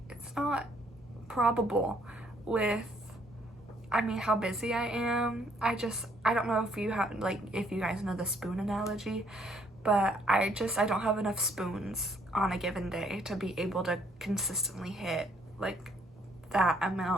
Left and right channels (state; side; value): normal; both; correlation 0.66